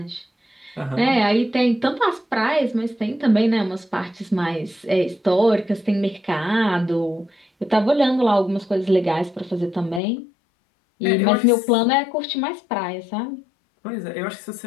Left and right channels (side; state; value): right; drops out; at 10.0 s